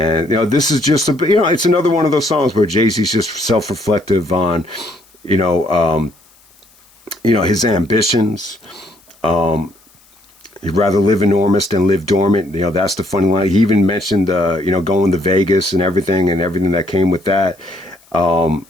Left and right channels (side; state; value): left; noise; hiss, 30 dB below the sound